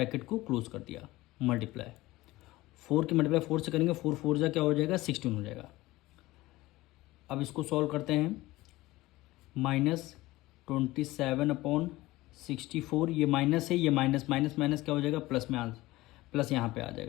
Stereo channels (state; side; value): quieter; right; 18.7 dB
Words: को क्लोज कर दिया, मल्टीप्लाई 4 की मल्टीप्लाई 4 से करेंगे, 4 4 जा क्या हो जाएगा 16 हो जाएगा। अब इसको सॉल्व करते हैं, -27/64, ये माइनस है, ये माइनस माइनस माइनस क्या हो जाएगा प्लस में, आंसर प्लस यहाँ पे आ